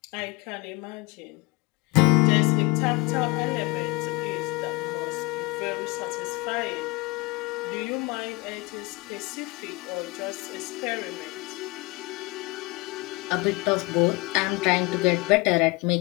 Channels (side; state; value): right; quieter; 25.8 dB